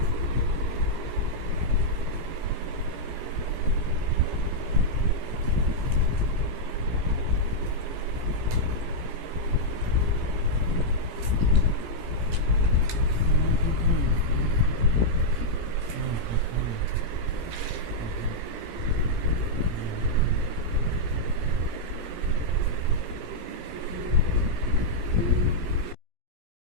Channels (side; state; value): left; late; 17 ms